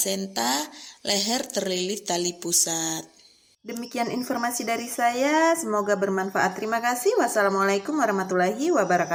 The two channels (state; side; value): identical; both; correlation 1.00